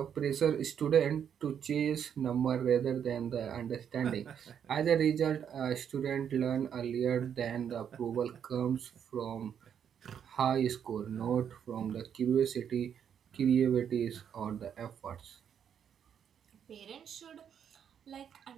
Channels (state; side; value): quieter; left; 8.4 dB